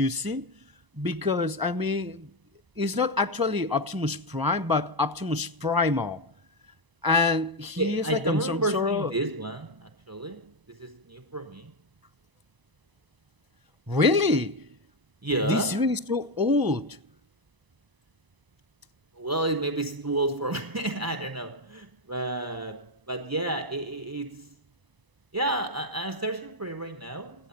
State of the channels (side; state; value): left; late; 1.0 ms